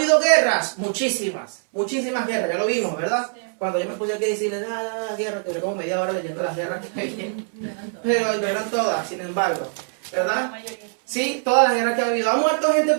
guerras? Muchísimas. Muchísimas guerras. Ya lo vimos, ¿verdad? Cuando yo me puse aquí a decirle, guerra, que como media hora leyendo las guerras que hay. Pero no eran todas, sin embargo. ¿Verdad? Sí, todas las guerras que ha habido. ¿Ha muerto gente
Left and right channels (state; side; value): silent; left; 63 dB below the other